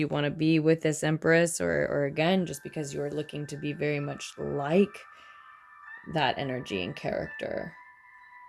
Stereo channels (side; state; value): both; identical; correlation 1.00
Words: want to be with this Empress, or again, just because you're looking to be very much like that energy and character.